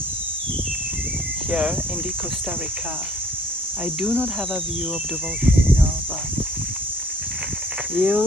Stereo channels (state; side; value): normal; both; correlation 0.58